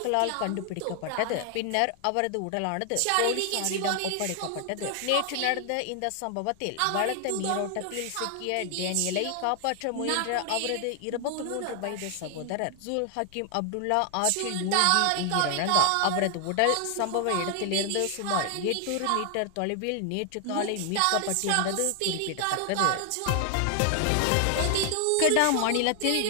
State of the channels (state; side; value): different; both; correlation 0.00